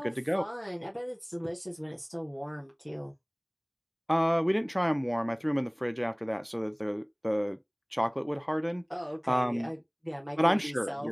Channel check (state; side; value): identical; both; correlation 1.00